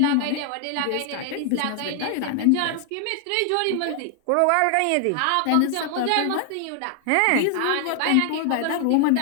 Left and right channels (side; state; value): both; different; correlation 0.00